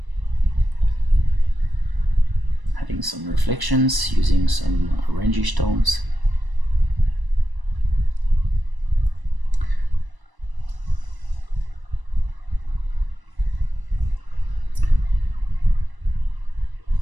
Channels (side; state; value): left; late; 1.0 ms